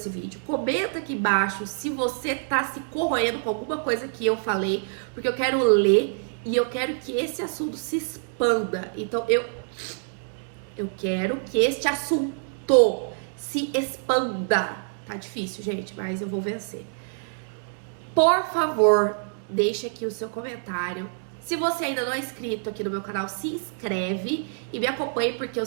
vídeo? Comenta aqui embaixo se você tá se corroendo com alguma coisa que eu falei, porque eu quero ler e eu quero que esse assunto se expanda. Então, eu quero que este assunto se expanda. Tá difícil, gente, mas eu vou vencer. Por favor, deixe aqui o seu comentário. Se você ainda não é inscrito aqui no meu canal, se inscreve e me acompanhe, porque eu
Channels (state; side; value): silent; left; digital silence